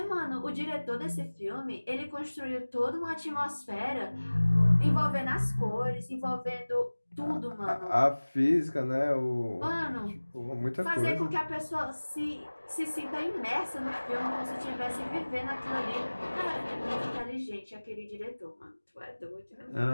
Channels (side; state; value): both; inverted; correlation -1.00